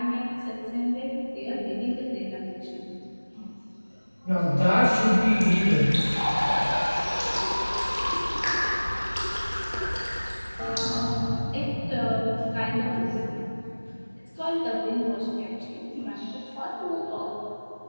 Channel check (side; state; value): both; inverted; correlation -1.00